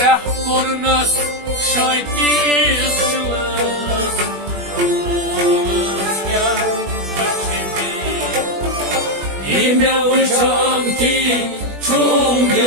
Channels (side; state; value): left; late; 20 ms